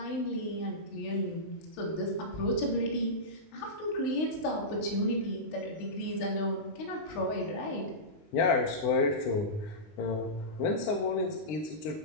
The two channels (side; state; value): right; late; 20 ms